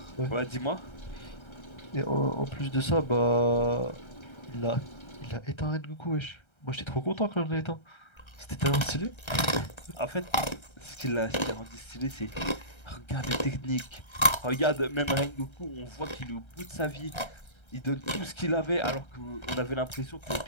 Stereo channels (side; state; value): right; late; 1.3 ms